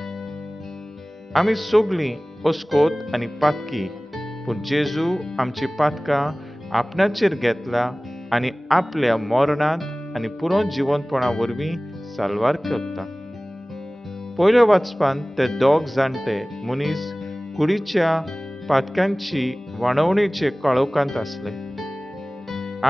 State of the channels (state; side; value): normal; both; correlation 0.98